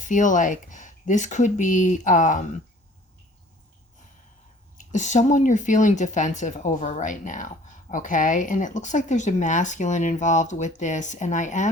like this could be someone you're feeling defensive over right now, okay? And it looks like there's a masculine involved with this, and I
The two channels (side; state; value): both; normal; correlation 0.52